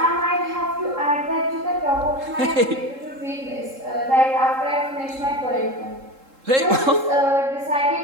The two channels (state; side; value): late; left; 3.7 ms